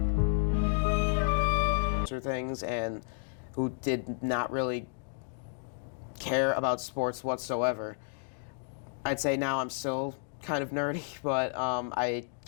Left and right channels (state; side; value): silent; right; digital silence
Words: Things, and who did not really care about sports whatsoever. I'd say now I'm still kind of nerdy, but I